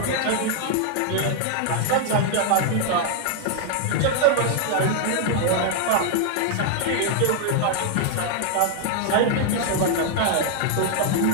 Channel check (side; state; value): both; different; correlation 0.00